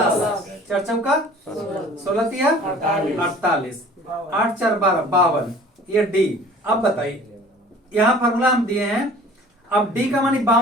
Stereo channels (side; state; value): both; normal; correlation 0.48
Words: 4 चौका 16 तिया 48, 8 4 12 52, ये डी। अब बताइए यहाँ फॉर्मूला हम दिए हैं, अब डी का मान